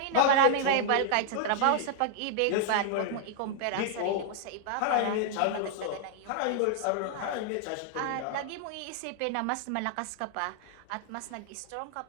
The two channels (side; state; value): both; different; correlation -0.01